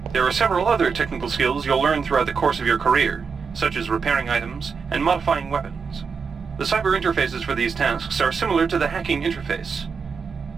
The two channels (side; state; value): left; quieter; 5.6 dB